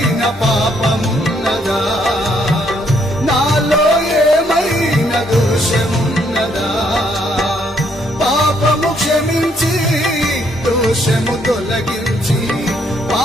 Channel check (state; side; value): normal; both; correlation 0.70